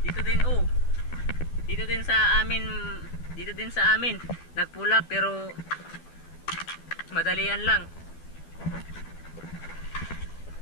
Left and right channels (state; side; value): late; right; 12 ms